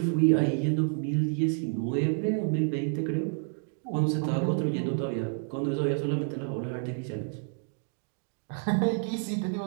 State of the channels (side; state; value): left; silent; 58 dB below the other